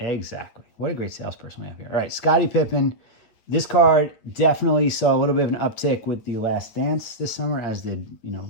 What a great salesperson we have here. All right, Scottie Pippen. This card definitely saw a little bit of an uptick with the Last Dance this summer, as did,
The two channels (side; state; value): right; late; 8.6 ms